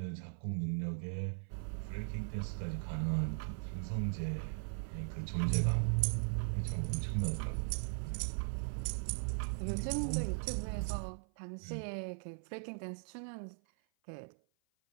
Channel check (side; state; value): left; silent; 52 dB below the other